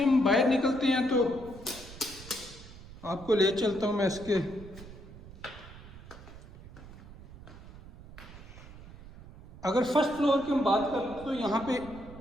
हम बाहर निकलते हैं तो आपको ले चलता हूँ मैं इसके अगर फर्स्ट फ्लोर की हम बात करें तो यहाँ पे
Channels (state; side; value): noise; right; rumble, 17 dB below the sound